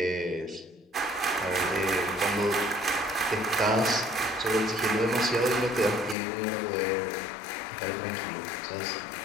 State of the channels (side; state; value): right; drops out; at 6.2 s